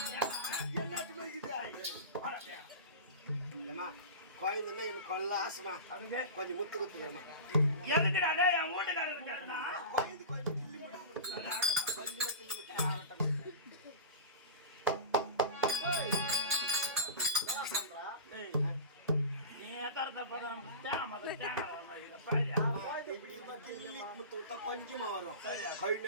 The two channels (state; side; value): inverted; both; correlation -0.30